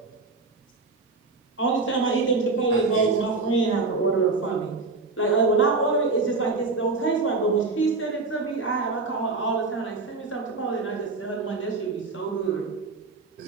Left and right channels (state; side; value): quieter; left; 3.9 dB